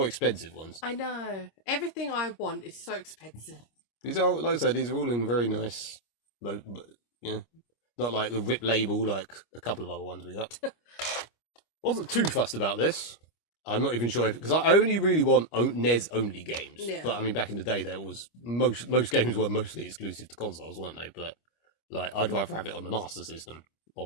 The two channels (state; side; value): late; right; 25 ms